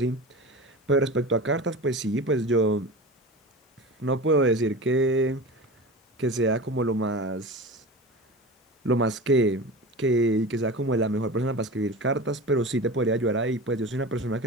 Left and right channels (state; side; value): normal; both; correlation 0.31